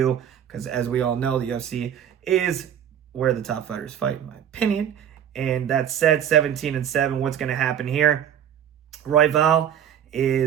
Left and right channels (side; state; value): left; quieter; 9.5 dB